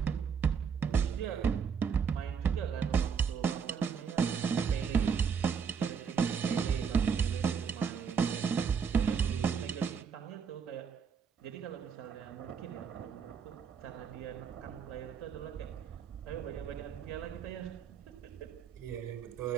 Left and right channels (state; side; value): quieter; left; 6.5 dB